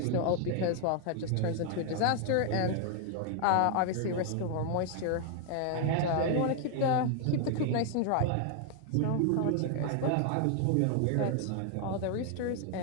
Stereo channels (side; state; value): both; different; correlation 0.00